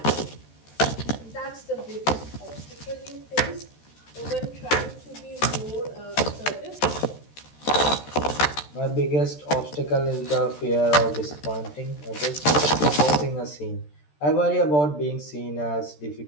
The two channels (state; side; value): late; right; 13 ms